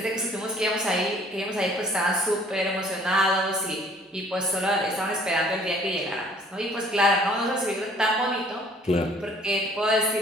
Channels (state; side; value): normal; both; correlation 0.57